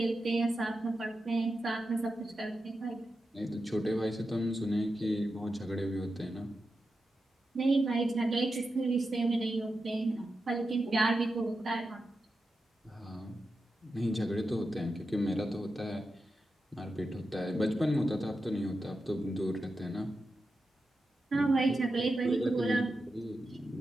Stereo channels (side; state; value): both; normal; correlation 0.89